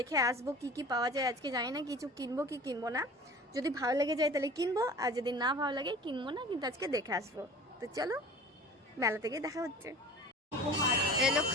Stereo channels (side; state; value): both; normal; correlation 0.40